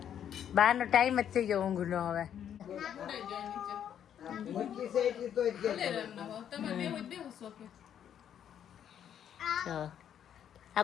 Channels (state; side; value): quieter; right; 9.4 dB